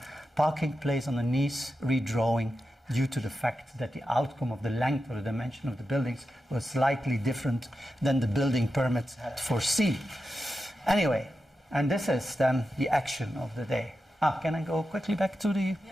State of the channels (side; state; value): both; normal; correlation 0.90